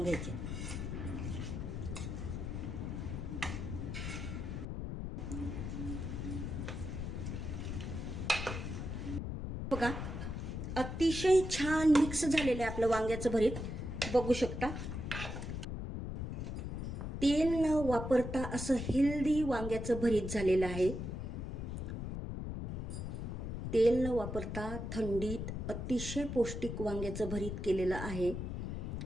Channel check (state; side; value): noise; left; rumble, 4 dB below the sound